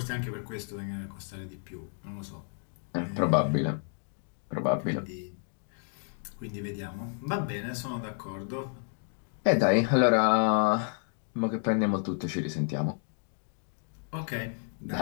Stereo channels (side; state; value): right; silent; 57 dB below the other